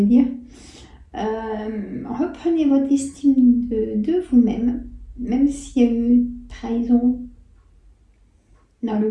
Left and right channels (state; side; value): identical; both; correlation 1.00